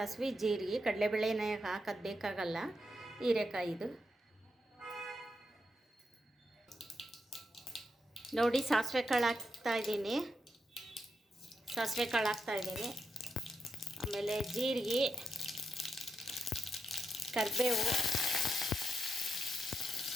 ಜೀರಿಗೆ, ಕಡಲೆಬೇಳೆನ ಹಾಕೋದು ಬೇಕಾಗಲ್ಲ ಹೀರೆಕಾಯಿದು. ನೋಡಿ ಸಾಸಿವೆ ಕಾಳು ಹಾಕ್ತಾಯಿದ್ದೀನಿ, ಆಮೇಲೆ ಜೀರಿಗೆ, ಕರಿಬೇವು,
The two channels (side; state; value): both; normal; correlation 0.83